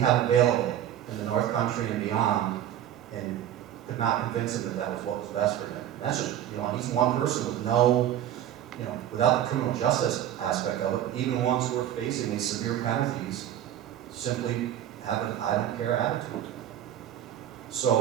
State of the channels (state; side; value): quieter; left; 11.3 dB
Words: available in the North Country and beyond, and could not convince him that that was what was best for him. And that's just, you know, he's one person with no, you know, without the criminal justice aspect of it, but even ones who are facing these severe penalties simply have an I don't care attitude.